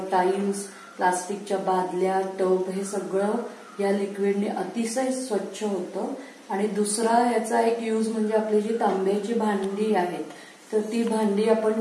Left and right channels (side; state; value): both; identical; correlation 1.00